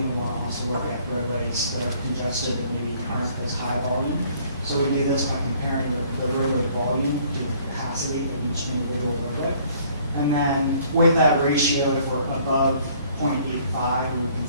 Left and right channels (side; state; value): both; inverted; correlation -0.59